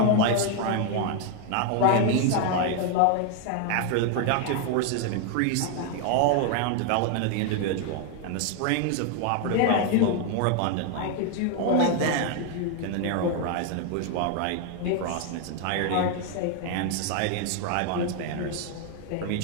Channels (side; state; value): both; different; correlation 0.01